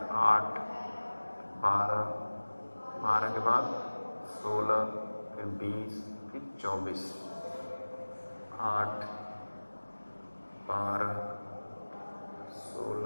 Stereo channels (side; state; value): both; inverted; correlation -1.00